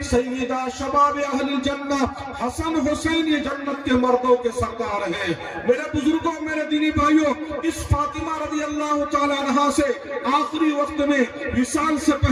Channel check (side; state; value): both; identical; correlation 1.00